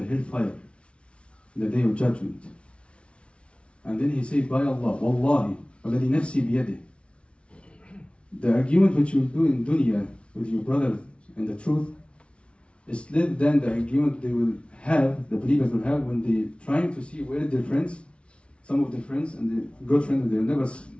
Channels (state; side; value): late; right; 0.060 ms